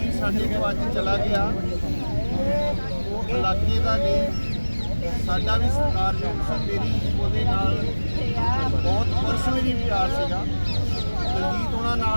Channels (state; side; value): inverted; both; correlation -1.00